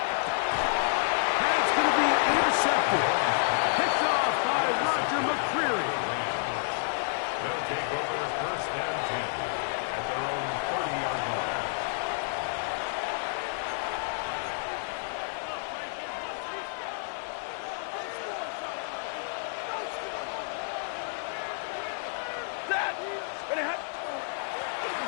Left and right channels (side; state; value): right; silent; 58 dB below the other